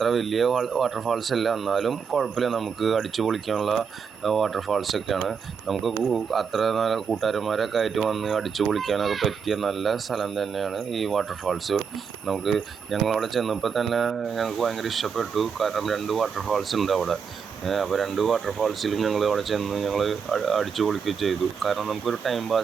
വലിയ വാട്ടർഫാൾസ് അല്ല, എന്നാലും കുഴപ്പമില്ല, നമുക്ക് അടിച്ചു പൊളിക്കാനുള്ള വാട്ടർഫാൾസൊക്കെയാണ്. നമുക്ക് അത്ര നല്ല കൂട്ടുകാരന്മാരൊക്കെ ആയിട്ട് വന്ന് അടിച്ചു പൊളിക്കാനൊക്കെ പറ്റിയ നല്ല സ്ഥലം തന്നെയാണ് ഈ വാട്ടർഫാൾസ്. ഞങ്ങളവിടെ ചെന്നപ്പോൾ തന്നെ ഞങ്ങൾക്ക് ഭയങ്കര ഇഷ്ടപ്പെട്ടു. കാരണം 2 വാട്ടർഫാൾസ് ഉണ്ട് അവിടെ. അപ്പോൾ 2 വാട്ടർഫാൾസിലും ഞങ്ങൾ അവിടെ ചെന്ന് ഞങ്ങൾ അടിച്ചു പൊളിക്കുകയും ചെയ്തു. കാരണം നമുക്കൊരു ടൈം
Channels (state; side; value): quieter; left; 6.3 dB